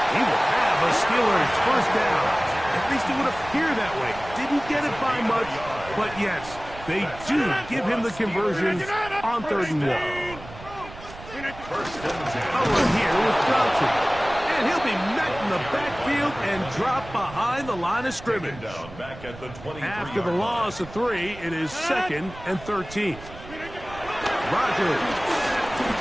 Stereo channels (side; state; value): right; noise; rumble, 16 dB below the sound